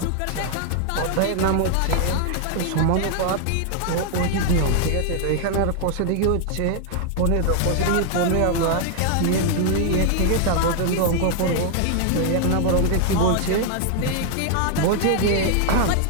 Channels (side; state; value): both; different; correlation 0.00